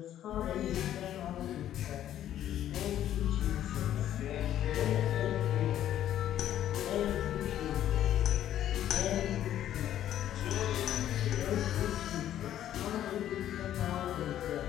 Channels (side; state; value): right; quieter; 11.6 dB